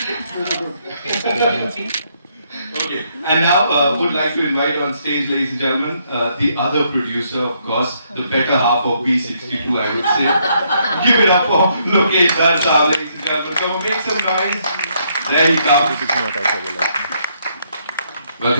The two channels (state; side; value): inverted; both; correlation -0.72